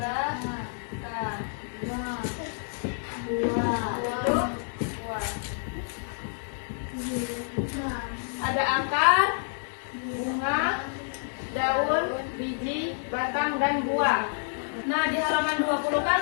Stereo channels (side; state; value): right; silent; digital silence